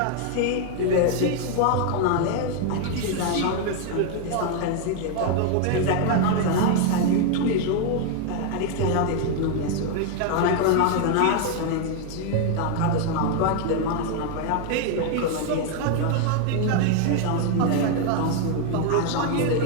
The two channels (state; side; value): different; both; correlation 0.01